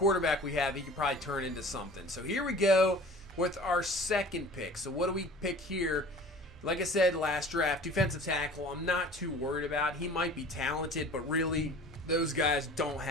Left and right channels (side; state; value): both; normal; correlation 0.44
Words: we have, he could probably turn into something. So here we go with our second pick. So what do we pick here? Like I said, last draft, defensive tackle, I'm not too worried about. He might be talented, but really, those guys don't